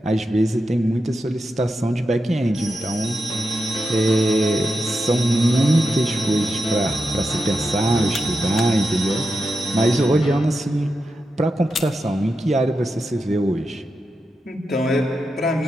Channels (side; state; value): both; normal; correlation 0.88